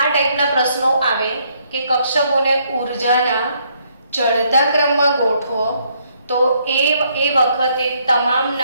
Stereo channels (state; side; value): inverted; both; correlation -0.71